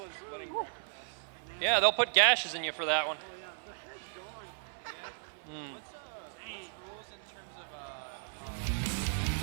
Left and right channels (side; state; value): left; silent; 54 dB below the other